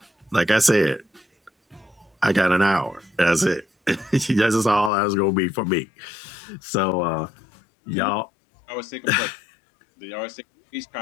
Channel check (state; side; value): drops out; right; at 4.9 s